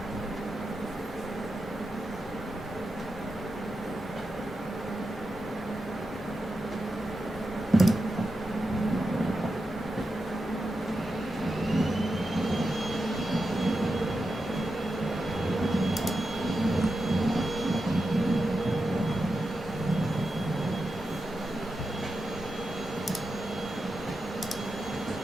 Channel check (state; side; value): normal; both; correlation 0.89